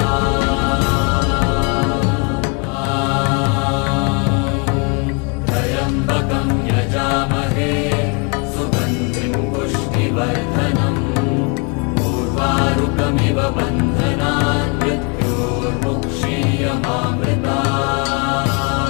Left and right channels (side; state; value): right; quieter; 34.5 dB